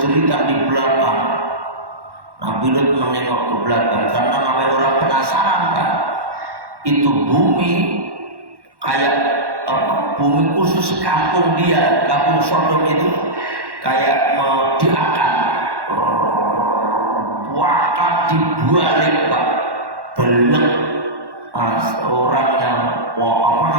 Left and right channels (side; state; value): left; late; 1.1 ms